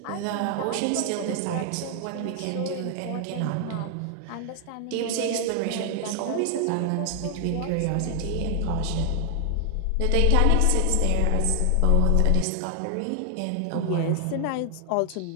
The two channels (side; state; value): both; different; correlation 0.00